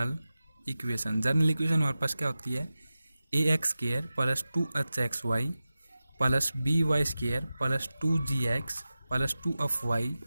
equation. General equation हमारे पास क्या होती है, ax² plus 2hxy plus by² plus 2gx plus 2y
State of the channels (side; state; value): both; inverted; correlation -0.95